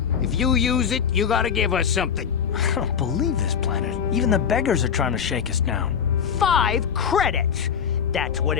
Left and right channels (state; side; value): quieter; right; 7.5 dB